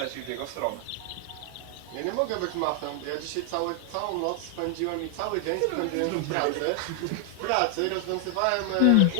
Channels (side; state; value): both; different; correlation 0.00